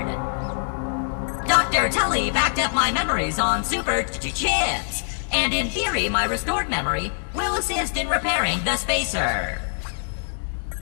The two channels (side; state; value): right; silent; digital silence